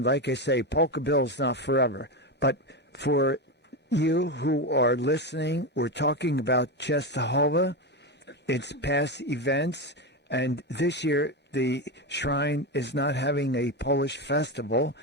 like I say, Polka Bill's not forever, but for you who are listening, we're talking about Czestochowa, its past events, and this year the shrine is not having a Polish festival,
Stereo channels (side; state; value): both; normal; correlation 0.15